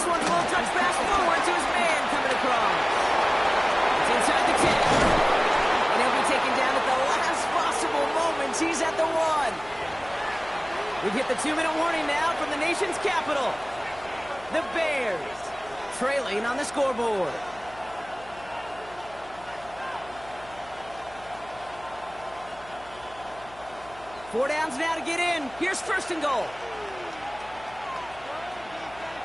one's a little touch pass forward to his man coming across. It's inside the 10. And he'll be taken down at the last possible moment. He's at the 1. We've hit the 2-minute warning now from the nation's capital. The Bears trailing on the scoreboard. Four downs now to get in. Here's 1st and goal.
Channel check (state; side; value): noise; left; hum, 22 dB below the sound